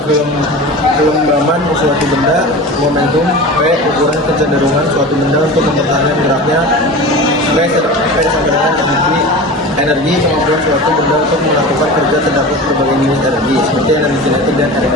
kelembaban suatu benda, momentum, P, ukuran kecenderungan suatu benda untuk mempertahankan geraknya, V sama dengan energi, kemampuan suatu benda untuk melakukan kerja terdapat berbagai jenis energi, seperti energi kinetik dan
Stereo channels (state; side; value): normal; both; correlation 0.32